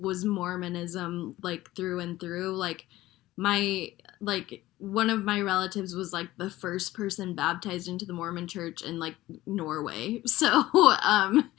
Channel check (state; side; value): quieter; right; 16.6 dB